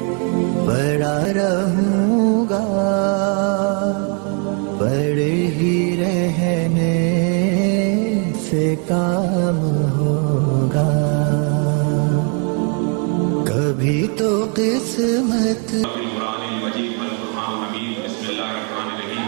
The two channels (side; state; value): left; quieter; 38.9 dB